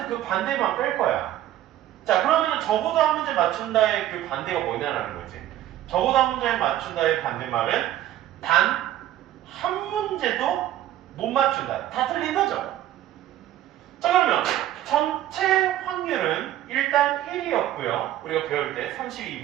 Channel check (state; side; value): quieter; left; 13.0 dB